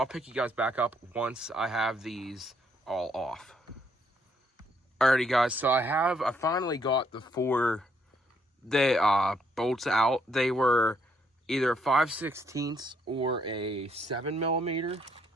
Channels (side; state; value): both; normal; correlation 0.72